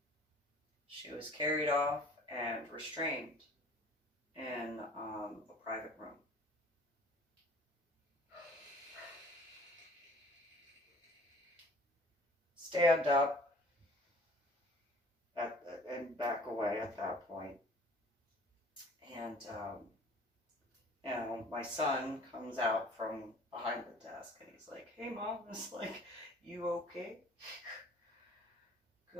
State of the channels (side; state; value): both; normal; correlation 0.50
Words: she was carried off and restrained in a private room. Stand up and back away at that point. And, you know, my son comes out from behind the desk and he's like, "Hey, Mom." It's like, "You okay?"